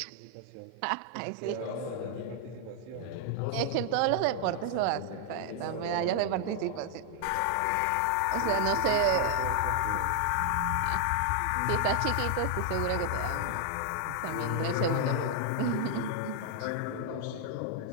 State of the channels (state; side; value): different; both; correlation 0.00